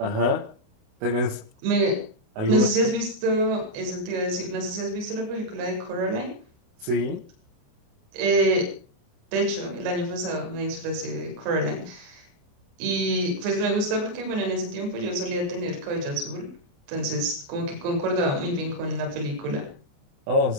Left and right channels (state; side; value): late; left; 28 ms